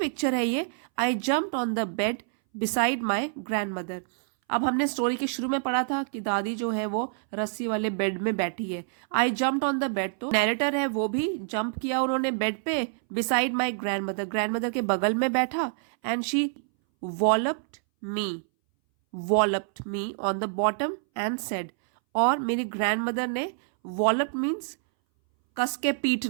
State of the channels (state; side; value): silent; left; 60 dB below the other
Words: है ये। आई jumped on the bed beside my grand mother, अब हमने स्टोरी के शुरू में पढ़ा था कि दादी जो है वो रस्सी वाले बेड में बैठी है। I jumped on the bed, तो नैरेटर है वो भी जंप किया उन्होंने बेड पे, beside my grandmother, grandmother के बगल में बैठा। And she walloped me on the bottom and said, और मेरी ग्रैंड मदर ने, वॉलप्ड मीन्स कस के